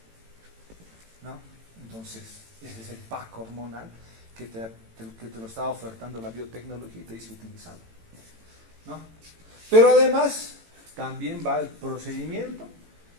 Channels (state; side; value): late; left; 18 ms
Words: ¿no? Entonces, ese es el pack hormonal que te lo está ofertando la biotecnología y te dice utilizarlo, ¿no? Pero además, también va el procedimiento,